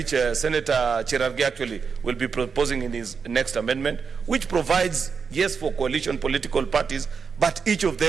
Senator Cherargei actually will be proposing in his next amendment, which provides, yes, for coalition political parties, but each of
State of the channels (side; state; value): left; quieter; 5.7 dB